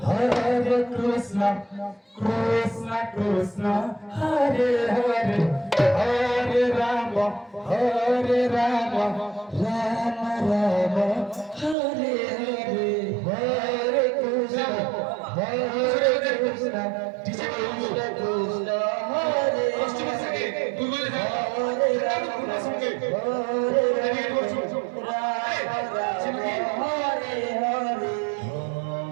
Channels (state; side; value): drops out; left; at 11.8 s